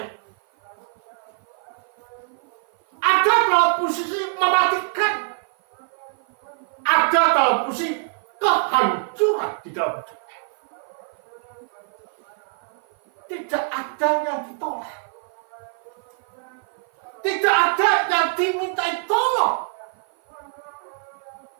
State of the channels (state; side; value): silent; left; 57 dB below the other